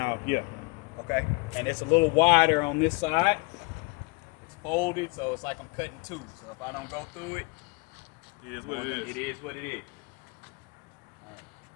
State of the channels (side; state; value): right; quieter; 27.0 dB